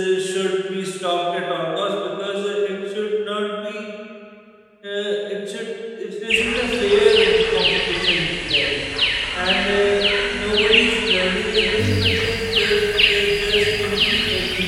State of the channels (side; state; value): both; identical; correlation 1.00